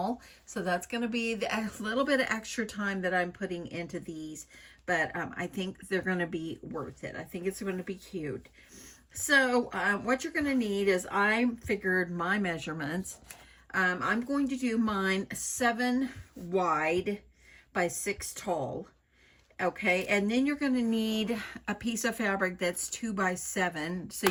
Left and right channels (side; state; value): both; identical; correlation 1.00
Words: so that's gonna be a little bit of extra time that I'm putting into these, but I think they're gonna be worth it. I think it's gonna be cute. So what you're gonna need is, I figured my measurements. I'm going to do mine 7 wide by 6 tall. Okay, and then you're going to need a piece of fabric that's 2 by 7 so